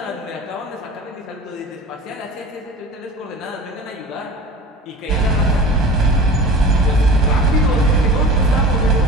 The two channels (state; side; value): normal; both; correlation 0.37